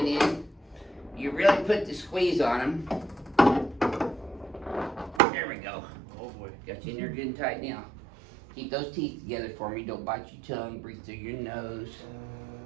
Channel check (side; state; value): left; drops out; at 5.2 s